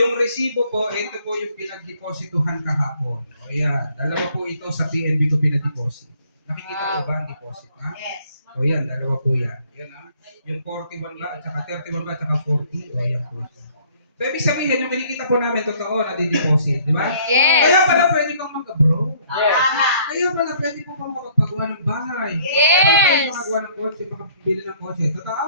resibo po, ito po yung pinagdeposituhan kahapon. O yan, dalawa po ito sa PNB ko pinag-deposit. Nakikita ko ba ang deposit, ha? Yes. O yan, dalawa po yan. Yan, ha? Yung 41 ba, at saka 31 ba, at saka 40. O yan po. So, ibig sabihin, yung kinikita po namin, totoo na di-deposit, di ba? Yes. Kaya pala pwede kang mag-abroad. Tama. Kaya pala pwede po kang makapagawa ng bahay. Yes. Kaya pala pwede makagawa ng kotse, makabili ng kotse. Totoo?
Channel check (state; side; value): inverted; both; correlation -0.59